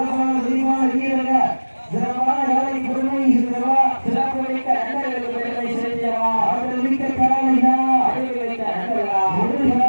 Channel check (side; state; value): both; inverted; correlation -1.00